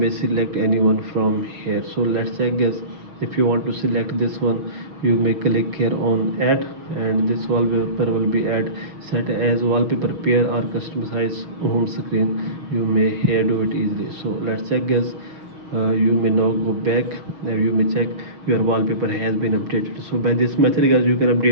select anyone from here. So let's check guys. If you want to select this one, you may click here on add, and this wallpaper will be add set as wallpaper pair or customize home screen. You may here do it easily. So let's check guys. You may now go back and you may check your wallpaper has been updated. So by this method guys, you can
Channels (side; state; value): left; late; 6.3 ms